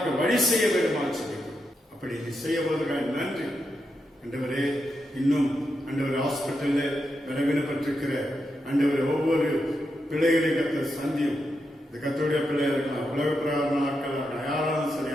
வழி செய்ய வேண்டுமா சொல்லிக்கிறோம். அப்படி நீ செய்ய போவதற்காக நன்றி ஆண்டவரே. இன்னும் ஆண்டவர் ஹாஸ்பிட்டலில் வினப்பட்டிருக்கிற ஆண்டவர் ஒவ்வொரு பிள்ளைகளையும் கர்த்தர் சந்தியும். இந்த கர்த்தருடைய பிள்ளையா இருக்கலாம், உலக பிரகாரமான ஆட்கள் இருக்கலாம், யாராலும் சரி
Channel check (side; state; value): both; normal; correlation 0.85